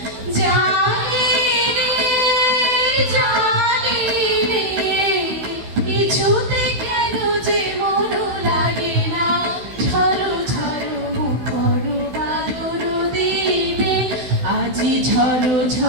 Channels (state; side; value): late; left; 16 ms